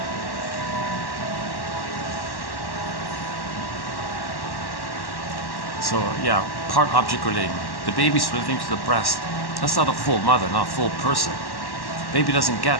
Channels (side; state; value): right; late; 1.1 ms